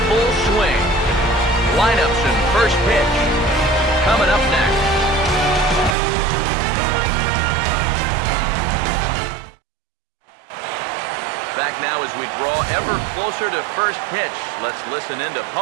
full swing. Lineups and first pitch coming up next. Back now as we draw ever closer to first pitch. Let's listen in to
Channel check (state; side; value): drops out; left; at 6.0 s